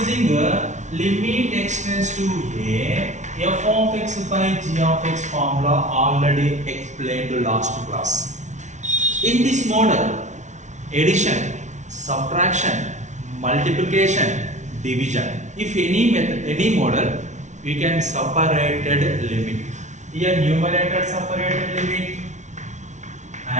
limit x tends to a, f of x by g of x formula already explained last class. In this model, addition, subtraction, multiplication, division, if any method, any model, we can separated limit. Here numerator separated limit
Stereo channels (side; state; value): left; late; 0.35 ms